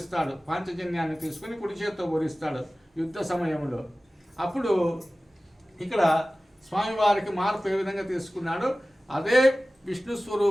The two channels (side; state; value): both; normal; correlation 0.97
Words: పాంచజన్యాన్ని తీసుకుని కుడి చేతితో పూరిస్తాడు యుద్ధ సమయంలో. అప్పుడు ఇక్కడ స్వామివారికి మార్పు ఏ విధంగా తీసుకున్నాడు? అదే విష్ణు